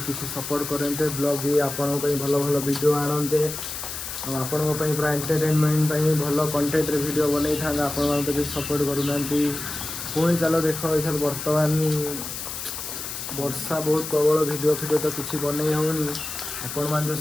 किसी सपोर्ट करते ब्लॉग भी आपण भल भल वीडियो आणते आपण पूरा एंटरटेनमेंट भल कंटेंट वीडियो बन था आपण तो सपोर्ट करूना पुणी चलो देख ये बर्तमान वर्षा बहुत प्रबल वीडियो तो किसी बनई होनी आपण मैंने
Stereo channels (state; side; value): noise; left; hiss, 7 dB below the sound